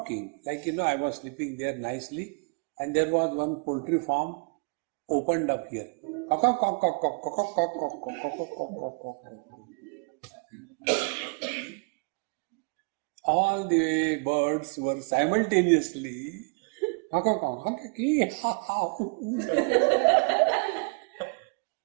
Like, I was sleeping there nicely and there was one poultry farm opened up here. All the birds were simultaneously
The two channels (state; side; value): quieter; left; 35.9 dB